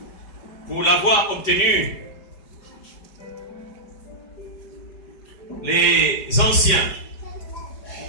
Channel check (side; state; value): right; late; 5.1 ms